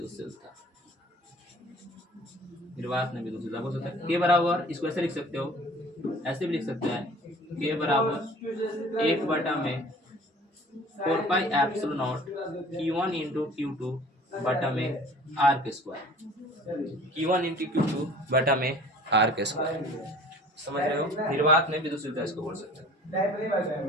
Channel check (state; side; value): normal; both; correlation 0.47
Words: निर्वात में विद्युतशीलता बोल सकते हैं। के बराबर इसको ऐसे लिख सकते हो, ऐसे भी लिख सकते हैं के बराबर 1 बटा में 4 pi epsilon not Q1 into Q2 बटा में आर के स्क्वायर, Q1 इंटू Q2 बटा में आर के स्क्वायर, समझ रहे हो। निर्वात में विद्युतशीलता इसको बोल सकते हैं।